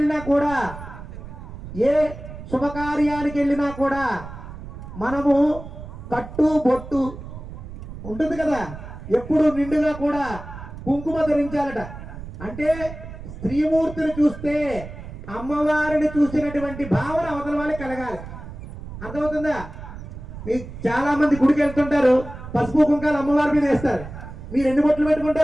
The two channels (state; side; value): noise; right; rumble, 12 dB below the sound